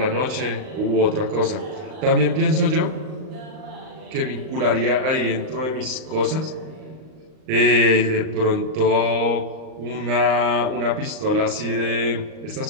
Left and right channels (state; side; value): late; left; 39 ms